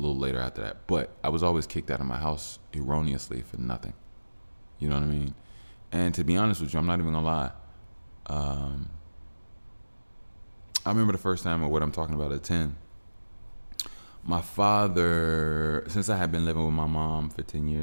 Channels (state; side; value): inverted; both; correlation -1.00